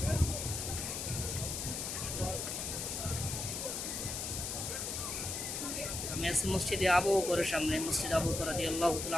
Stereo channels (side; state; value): left; noise; hiss, 3 dB below the sound